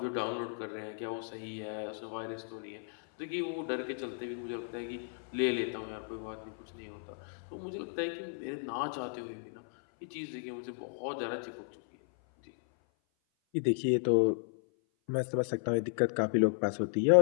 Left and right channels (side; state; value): right; silent; 55 dB below the other